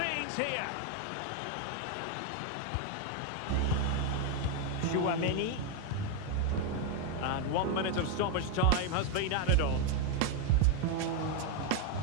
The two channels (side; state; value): both; different; correlation 0.01